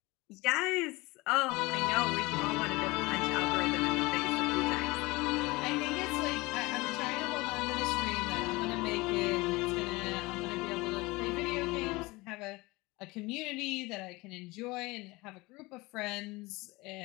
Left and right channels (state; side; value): quieter; right; 22.6 dB